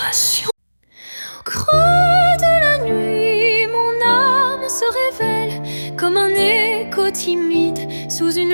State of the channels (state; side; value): inverted; both; correlation -1.00